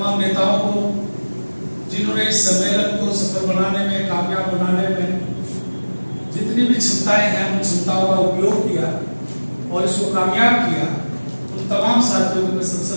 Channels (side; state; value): both; inverted; correlation -1.00